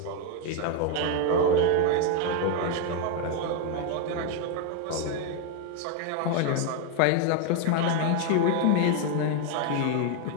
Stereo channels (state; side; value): different; both; correlation 0.01